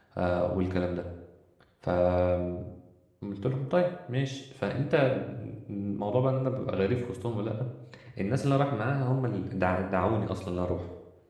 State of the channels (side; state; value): both; identical; correlation 1.00